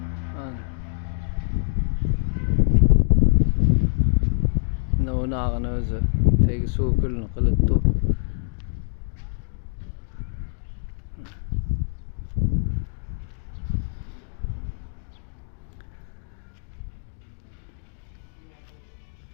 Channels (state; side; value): silent; right; digital silence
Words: Navnağını o'zi tegi so'kulni qilibdi.